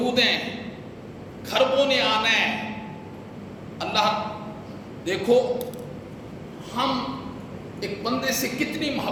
ہیں، کھربوں نے آنا ہے۔ اللہ دیکھو ہم ایک بندے سے کتنی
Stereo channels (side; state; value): both; identical; correlation 1.00